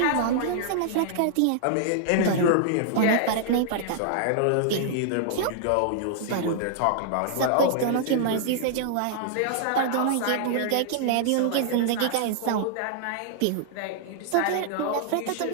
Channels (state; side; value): different; both; correlation -0.01